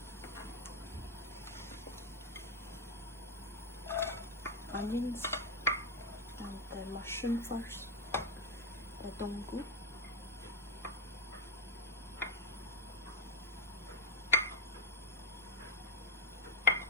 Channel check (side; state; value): both; normal; correlation 0.07